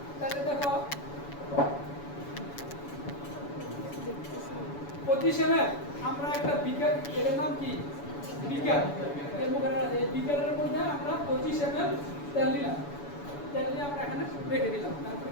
তাহলে দেখো 25 ml আমরা একটা বিকার এর নাম কি বিকার এর মধ্যে এই বিকারের মধ্যে আমরা 25 ml তেল নিলাম তেল নিয়ে আমরা এখানে রেখে দিলাম তারপর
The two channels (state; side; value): late; right; 7.0 ms